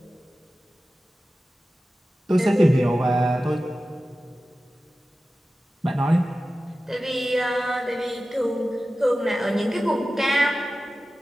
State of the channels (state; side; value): normal; both; correlation 0.95